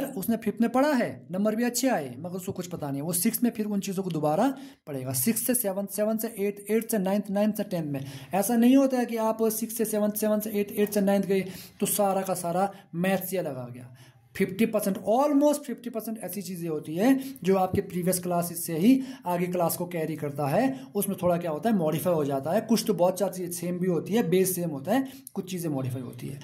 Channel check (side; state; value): both; identical; correlation 1.00